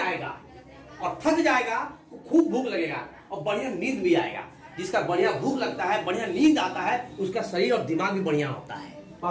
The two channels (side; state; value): both; identical; correlation 1.00